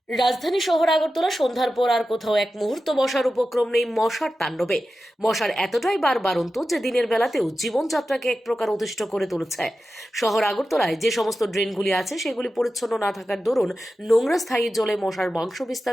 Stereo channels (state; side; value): normal; both; correlation 0.92